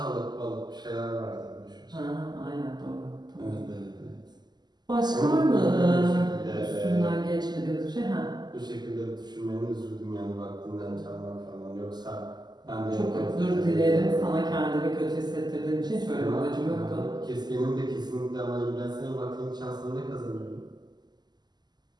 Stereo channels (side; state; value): left; late; 0.21 ms